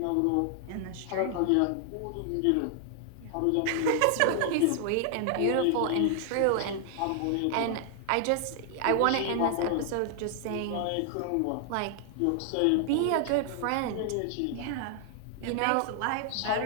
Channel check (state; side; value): different; both; correlation 0.00